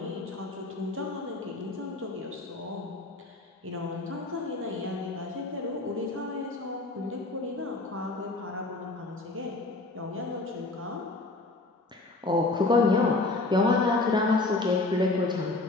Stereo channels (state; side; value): quieter; right; 3.2 dB